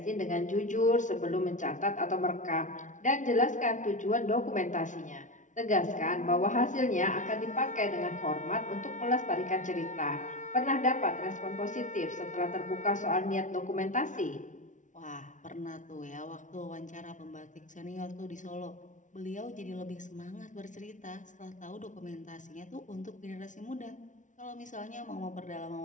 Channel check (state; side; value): late; right; 0.37 ms